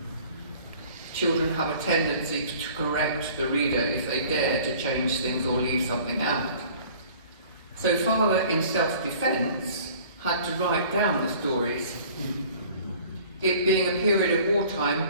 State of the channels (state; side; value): inverted; both; correlation -0.50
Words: Children have a tendency to correct the reader if they dare to change things or leave something out. So Father, in self-defence, had to write down the stories. It being a period of wartime